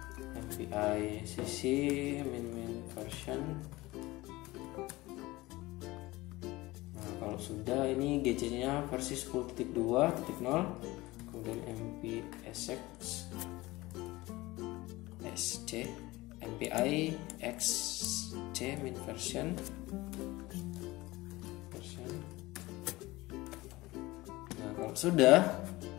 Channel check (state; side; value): quieter; right; 20.0 dB